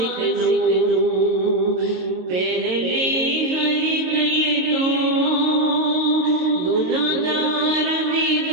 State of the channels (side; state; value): left; late; 22 ms